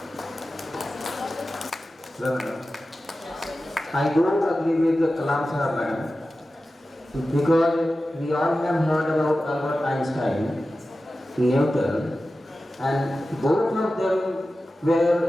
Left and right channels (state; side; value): normal; both; correlation 0.94